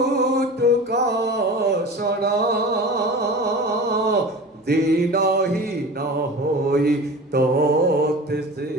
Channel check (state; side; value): normal; both; correlation 0.35